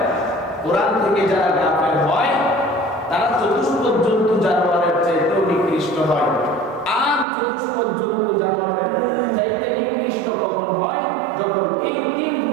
কোরআন থেকে যারা গাফেল হয়, তারা চতুষ্পদ জন্তু জানোয়ারের চাইতেও নিকৃষ্ট হয়। আর চতুষ্পদ জন্তু জানোয়ারের চাইতে নিকৃষ্ট কখন হয়? যখন এই তিন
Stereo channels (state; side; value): drops out; left; at 7.2 s